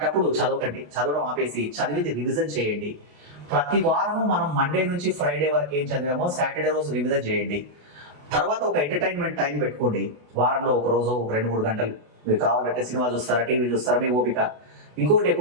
చదవకండి, చదవడం ఆపేసి చదివింది రివిజన్ చేయండి. ప్రతి వారము మనం మండే నుంచి ఫ్రైడే వరకు ఏం చదివామో సాటర్డే రోజు రివిజన్ చేయండి. తర్వాత ఒక ఎంటర్టైన్మెంట్ టైం పెట్టుకోండి, వారంలో ఒక రోజు 2-3 గంటలు. మీరు కావాలంటే సినిమా చూస్తారా, టీవీ చూస్తారా, మీ ఓపిక. ఇంకొకటి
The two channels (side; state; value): left; late; 28 ms